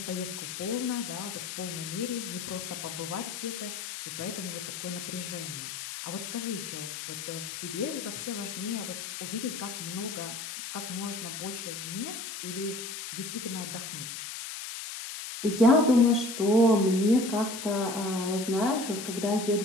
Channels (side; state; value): left; noise; hiss, 7 dB below the sound